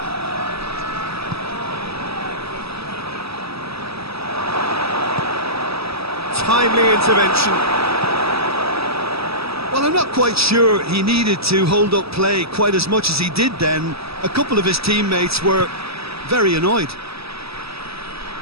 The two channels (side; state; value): left; late; 0.77 ms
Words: Timely intervention. Well, I'm not quite sure he needed to hold up play quite as much as he did then. A couple of his teammates were very annoyed.